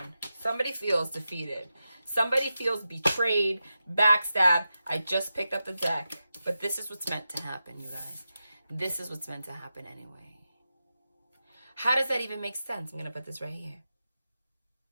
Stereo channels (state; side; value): inverted; both; correlation -0.90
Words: Somebody feels defeated. Somebody feels betrayed, backstabbed. I just picked up the deck. But this is what's meant to happen, you guys. This is what's meant to happen anyway. How does that even make sense? I'm going to put this right here.